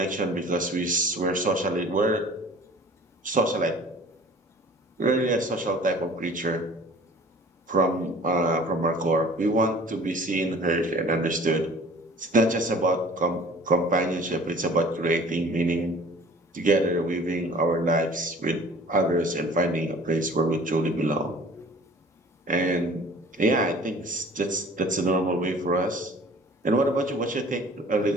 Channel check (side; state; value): both; normal; correlation 0.47